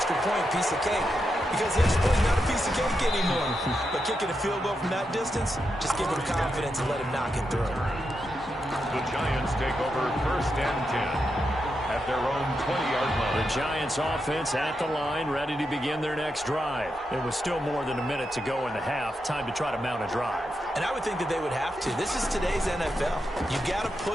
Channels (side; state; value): both; normal; correlation 0.86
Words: point, piece of cake. Because the extra point is not a piece of cake anymore. But kicking a field goal from that distance, just give him confidence and let him knock it through. The Giants take over 1st and 10 at their own 20-yard line. The Giants offense at the line, ready to begin their next drive. It was still more than a minute to go in the half. Time to try to mount a drive. And I would think that they would have to. This is today's NFL. You got to